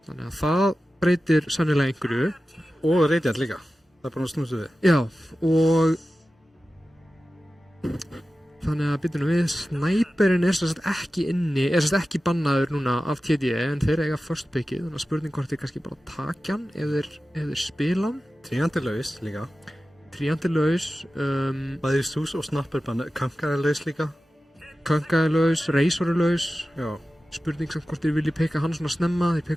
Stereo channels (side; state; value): both; normal; correlation 0.94